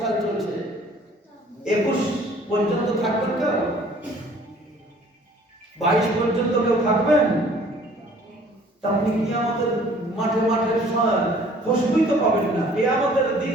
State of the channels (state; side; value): normal; both; correlation 0.54